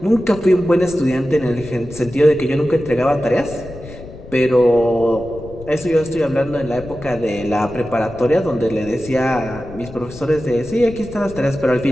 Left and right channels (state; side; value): noise; left; rumble, 16 dB below the sound